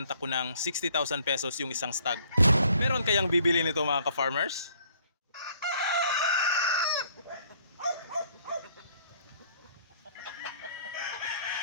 ko ng 60,000 pesos yung isang stag. Meron kayang bibili nito mga ka-farmers?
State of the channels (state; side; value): inverted; both; correlation -0.62